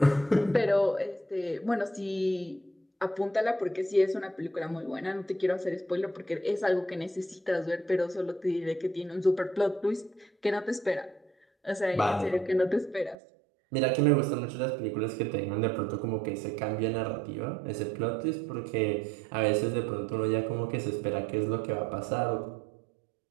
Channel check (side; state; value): left; drops out; at 13.2 s